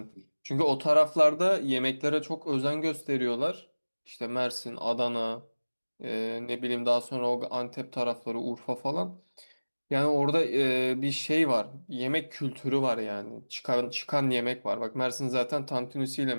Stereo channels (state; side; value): inverted; both; correlation -1.00